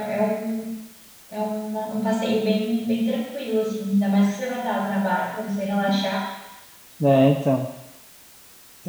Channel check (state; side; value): identical; both; correlation 1.00